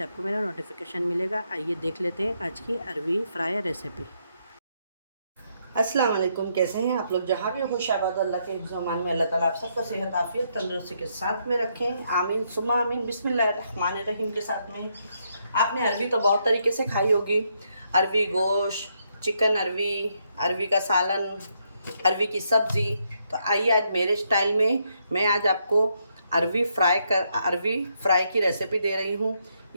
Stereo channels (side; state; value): both; inverted; correlation -0.76